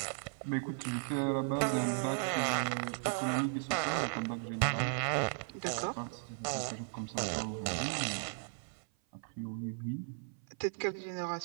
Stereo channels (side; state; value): left; silent; 54 dB below the other